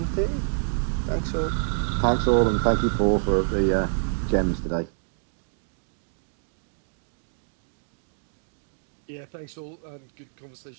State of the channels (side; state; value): left; silent; digital silence